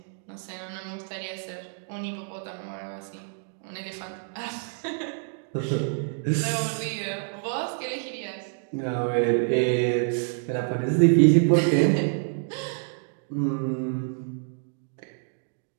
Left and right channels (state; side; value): silent; left; digital silence